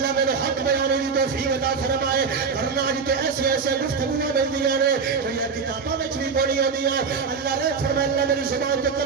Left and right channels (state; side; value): quieter; left; 5.5 dB